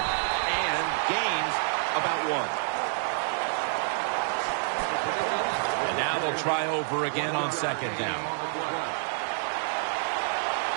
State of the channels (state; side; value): silent; left; digital silence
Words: and gains about 1. And now they'll try over again on 2nd down.